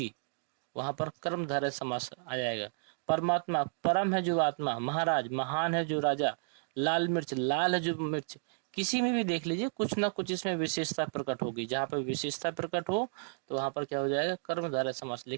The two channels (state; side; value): silent; left; digital silence